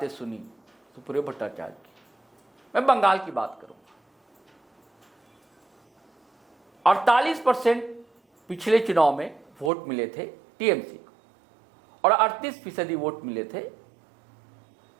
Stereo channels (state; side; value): drops out; left; at 9.7 s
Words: सुनी, सुप्रियो भट्टाचार्य की। मैं बंगाल की बात करूंगा। 48% पिछले चुनाव में वोट मिले थे टीएमसी को और 38% वोट मिले थे